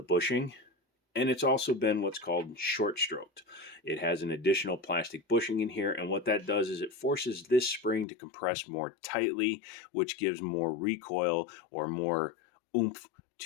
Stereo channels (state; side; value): drops out; right; at 8.1 s